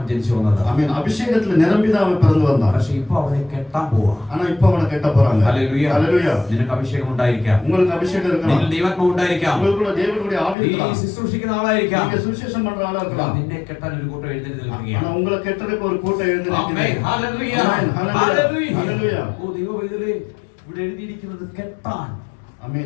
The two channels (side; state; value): right; drops out; at 10.6 s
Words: ജനിച്ചു വന്നത്. ஆமென். அபிஷேகத்துல நிரம்பிதான் அவன் பிறந்து வந்தான். പക്ഷെ ഇപ്പൊ അവനെ കെട്ടാൻ പോവാ. ஆனா இப்ப அவனை கெட்ட போறாங்க. ഹല്ലേലൂയ. ஹalleluya. നിനക്ക് അഭിഷേകം ഉണ്ടായിരിക്കാം. உங்களுக்கு அபிஷேகம் இருக்கலாம். നിന്നിൽ ദൈവാത്മാവ് ഉണ്ടായിരിക്കാം. உங்களுக்குள்ள தேவனுடைய ஆவி നീ இருக்கலாம். ശുശ്രൂഷിക്കുന്ന ആളായിരിക്കാം. நீங்க சுவிசேஷம் பண்ற ஆளா இருக்கலாம். നിന്നെ കെട്ടാൻ ഒരു കൂട്ടം എഴുന്നേറ്റ് ஆனா നിൽക്കുകയാണ്. உங்களை கெட்டறதுக்கு ஒரு கூட்டம் எழுந்து ആമേൻ. நிக்குது. ഹല്ലേലൂയ. ആമേൻ. ഹല്ലേലൂയ. ഹല്ലേലൂയ. ഓ ദൈവവൈദ്യലേ, ഇവിടെ എഴുതിയിരിക്കുന്നത് കെട്ടാൻ.